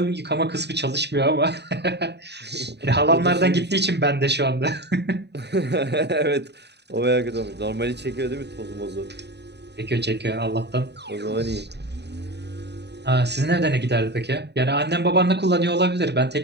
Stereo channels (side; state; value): left; late; 0.49 ms